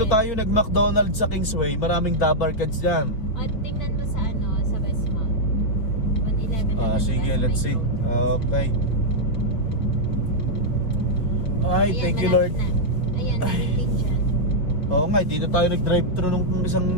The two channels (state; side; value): late; right; 4.7 ms